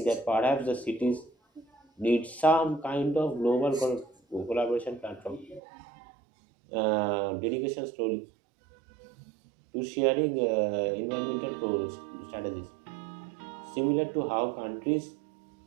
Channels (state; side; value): drops out; left; at 5.6 s